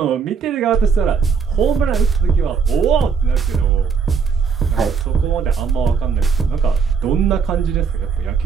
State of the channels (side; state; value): left; quieter; 5.8 dB